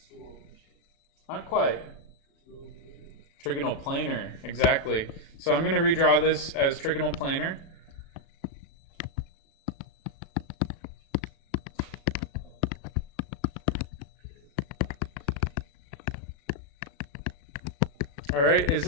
Not quite. Trigonal planar, exactly. So I'm going to redraw this as trigonal planar. All right, is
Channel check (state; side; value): late; right; 36 ms